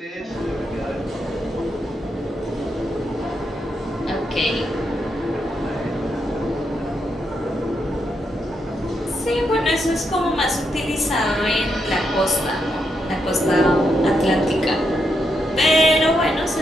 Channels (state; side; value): normal; both; correlation 0.81